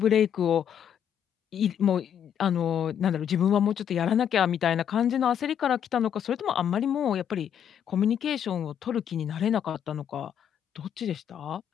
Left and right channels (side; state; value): right; quieter; 9.0 dB